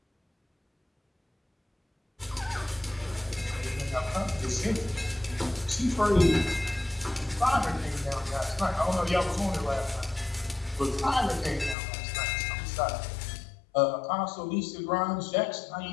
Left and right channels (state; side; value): drops out; right; at 11.8 s